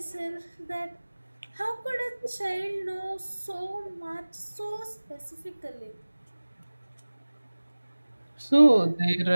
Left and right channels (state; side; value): inverted; both; correlation -1.00